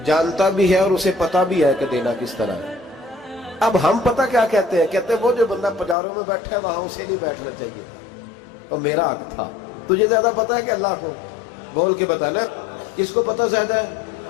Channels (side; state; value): right; drops out; at 6.0 s